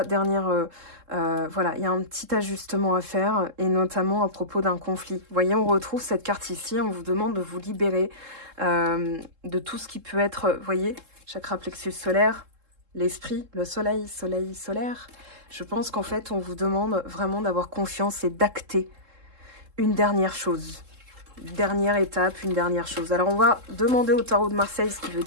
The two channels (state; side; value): late; left; 3.7 ms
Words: voilà, il y a un petit ajustement à faire, et notamment à propos d'un conflit. Vous voyez, on retrouve cette carte ici, on vous demande de vous libérer de tout ce qui peut être, vous voyez, chakra plexus solaire, l'esprit, le soleil, soleil, solaire. Je pense qu'en fait, on vous demande vraiment d'avoir confiance et d'acter une dernière chose. Dernière étape, une dernière chose. Alors, on va demander au tarot de Marseille ce qui veut